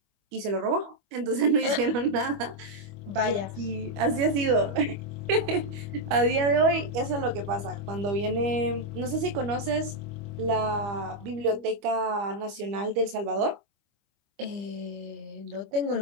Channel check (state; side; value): late; left; 25 ms